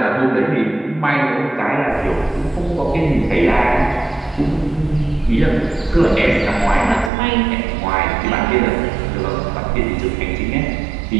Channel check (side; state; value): left; drops out; at 7.1 s